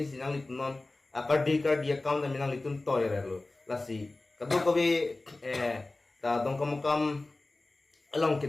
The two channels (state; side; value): quieter; right; 3.0 dB